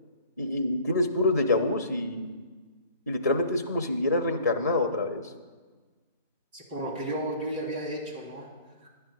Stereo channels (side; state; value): both; inverted; correlation -0.50